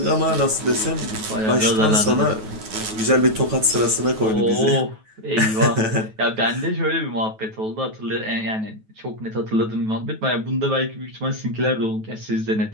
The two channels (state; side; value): late; left; 9.3 ms